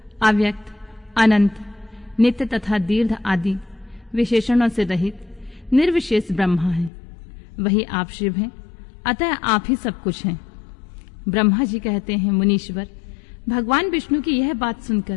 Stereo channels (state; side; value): drops out; right; at 6.9 s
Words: अव्यक्त, अनंत, नित्य तथा दीर्घ आदि विशेषणों से रहित निर्विशेष ब्रह्मा है। वही आप शिव हैं, अतः आप ही सब कुछ हैं। ब्रह्मा जी कहते हैं, मुनीश्वर, भगवान विष्णु की यह बात